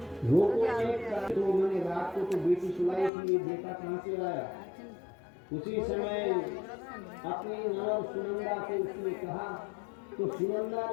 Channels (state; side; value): drops out; right; at 3.1 s